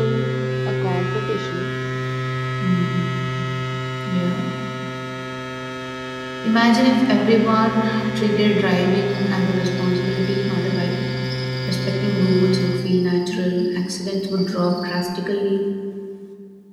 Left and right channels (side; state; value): both; identical; correlation 1.00